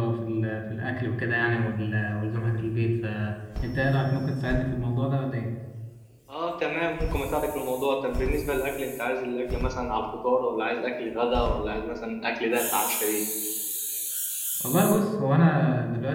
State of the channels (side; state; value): both; identical; correlation 1.00